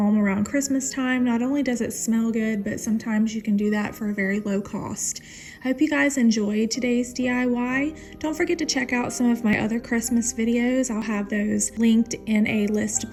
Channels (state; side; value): identical; both; correlation 1.00